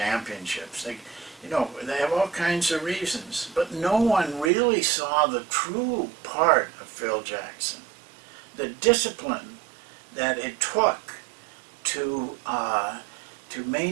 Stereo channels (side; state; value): left; drops out; at 4.5 s